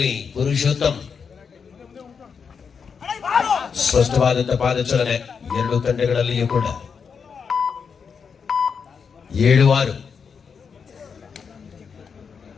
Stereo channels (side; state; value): right; quieter; 6.1 dB